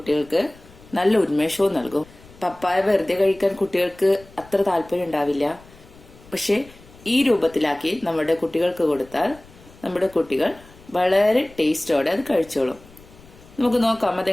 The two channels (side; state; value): left; noise; rumble, 23 dB below the sound